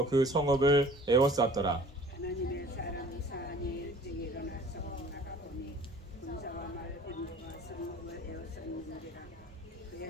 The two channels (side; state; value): both; normal; correlation 0.48